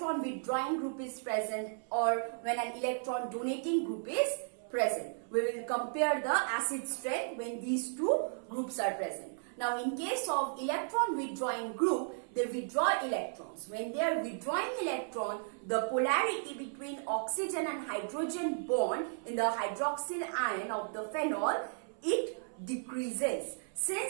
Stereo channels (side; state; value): left; silent; 55 dB below the other